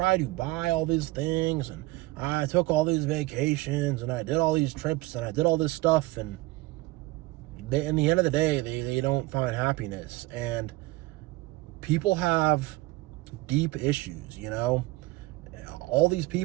to buy all these things, and I took all these vacations, and I did all these trips, and I did all this stuff, and in the end of the day, they don't find happiness. And people have deep issues, you know. All these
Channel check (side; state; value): left; quieter; 20.2 dB